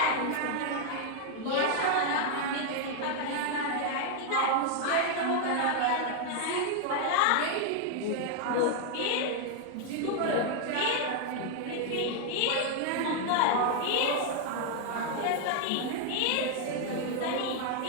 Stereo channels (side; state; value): both; different; correlation 0.00